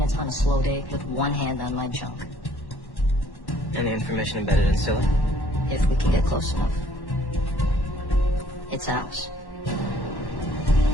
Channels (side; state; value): right; late; 1.1 ms